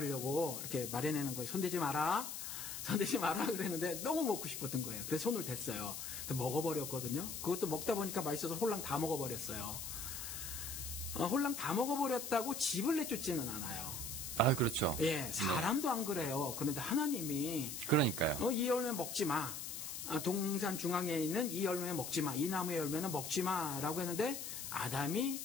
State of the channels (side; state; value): left; noise; hiss, 6 dB below the sound